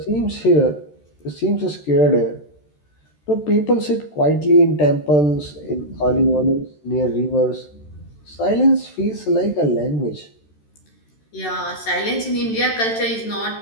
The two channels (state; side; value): late; right; 13 ms